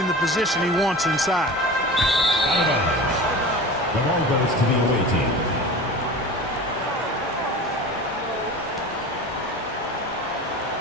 the position he wants inside. The ball goes to the away team.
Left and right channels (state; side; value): normal; both; correlation 0.34